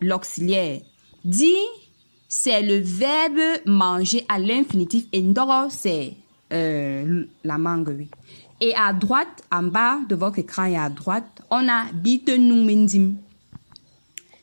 Di, c'est le verbe manger à l'infinitif. Et ndoro, c'est la mangue, oui. Et à droite, en bas de votre écran et à droite, on a bite nous mindim.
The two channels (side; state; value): both; inverted; correlation -1.00